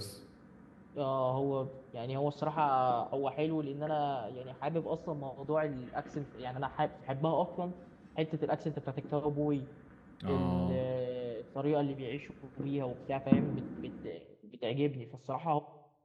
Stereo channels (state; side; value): identical; both; correlation 1.00